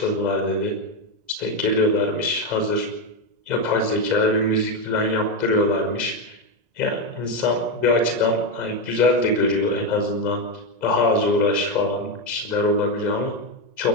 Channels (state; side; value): late; left; 2.0 ms